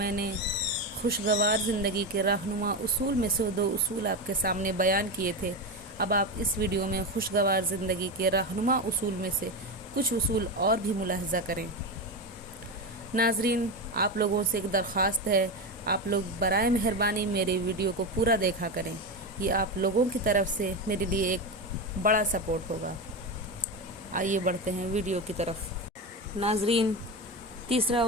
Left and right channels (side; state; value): both; normal; correlation 0.16